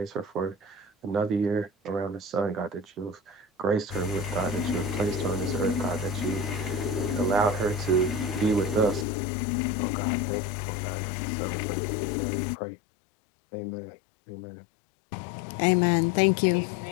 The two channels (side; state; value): right; drops out; at 9.1 s